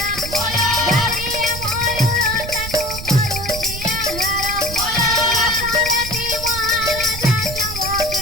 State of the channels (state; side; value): noise; right; rumble, 9 dB below the sound